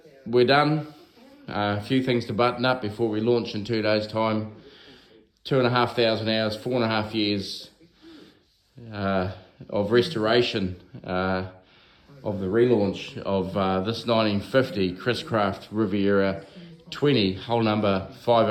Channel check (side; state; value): both; identical; correlation 1.00